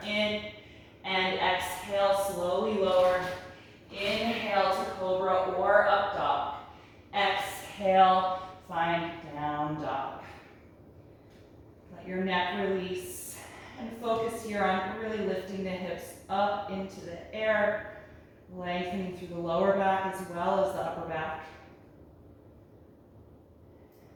in and exhale, slowly lower. Inhale to cobra or up dog. Exhale, find down dog. Let your neck release and focus here on really lifting the hips up into the air, lengthening through the lower back as well as the upper back.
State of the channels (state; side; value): identical; both; correlation 1.00